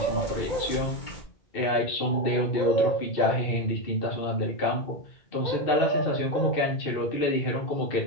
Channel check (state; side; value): late; right; 2.6 ms